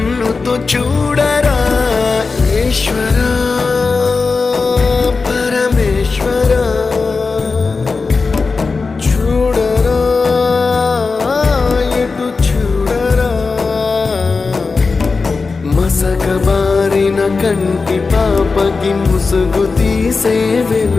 చూడరా ఈశ్వరా పరమేశ్వరా చూడరా ఎటు చూడరా మసకబారిన కంటి పాపకి ముసుగు తీసే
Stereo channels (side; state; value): right; quieter; 4.3 dB